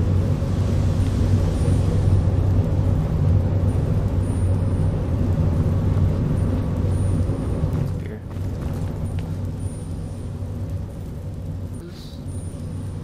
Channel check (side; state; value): both; identical; correlation 1.00